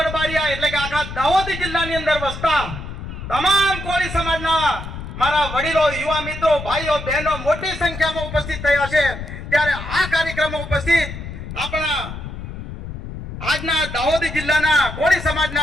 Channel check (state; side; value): noise; left; rumble, 9 dB below the sound